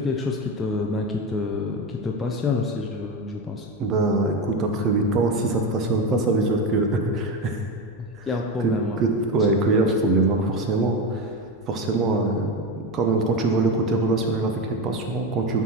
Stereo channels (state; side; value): noise; left; hum, 28 dB below the sound